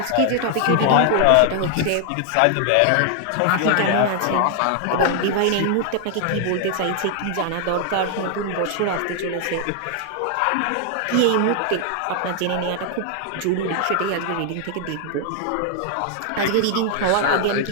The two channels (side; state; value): both; different; correlation 0.00